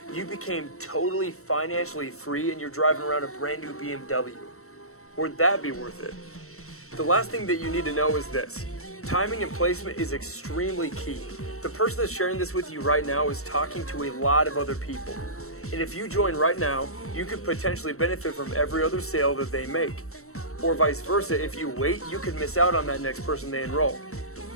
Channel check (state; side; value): late; right; 0.63 ms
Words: you became totally financially free and you're driving around a brand new BMW? Would that be worth it? The last thing that you need to know is this. Timing and placement is extremely key. The person that's sharing this with you right now is talking to a lot of other people. And if you join right now, you could potentially benefit from every other sale that they make. Or vice versa, if you wait, you could miss out on that next person they enroll.